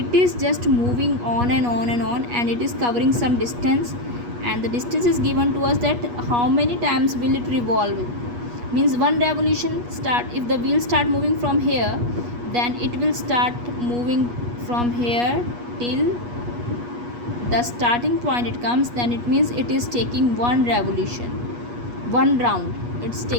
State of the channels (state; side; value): late; left; 8.3 ms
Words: is just moving on and on and on, and it is covering some distance, and the distance is given to us. That how many times will it revolve means one revolution start. If the wheel start moving from here, then it will start moving from here till the starting point it comes. Then it means it is taking one revolution, one round. It's